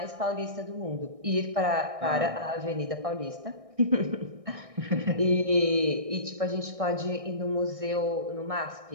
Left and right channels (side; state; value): left; late; 1.6 ms